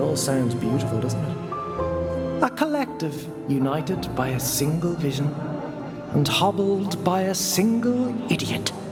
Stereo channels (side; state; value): both; identical; correlation 1.00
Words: sounds beautiful, doesn't it? A collective united by a single vision and hobbled by a single idiot.